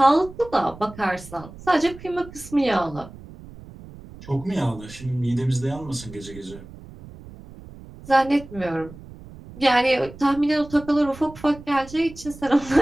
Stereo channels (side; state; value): right; noise; rumble, 17 dB below the sound